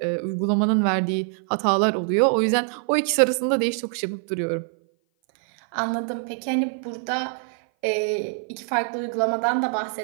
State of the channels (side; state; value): left; silent; 57 dB below the other